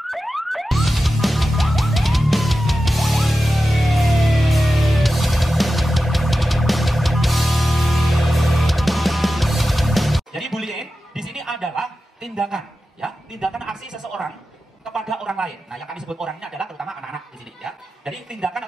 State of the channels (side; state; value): both; normal; correlation 0.93